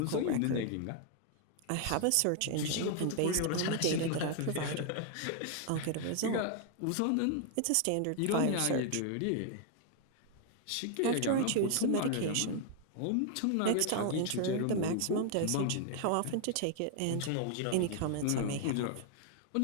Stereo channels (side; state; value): both; different; correlation 0.00